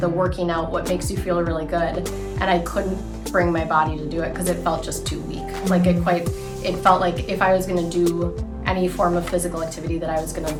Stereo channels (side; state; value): both; identical; correlation 1.00